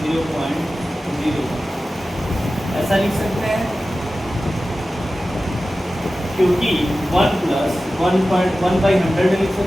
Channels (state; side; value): normal; both; correlation 0.95